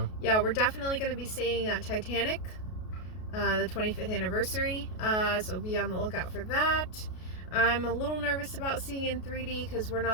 yeah, we're definitely gonna be seeing Titanic, the 25th anniversary. So be on the lookout for that. I'm a little nervous about seeing in 3D because we're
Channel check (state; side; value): late; right; 33 ms